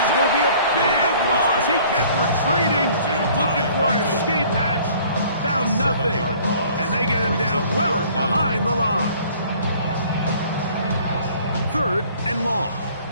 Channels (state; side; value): inverted; both; correlation -0.54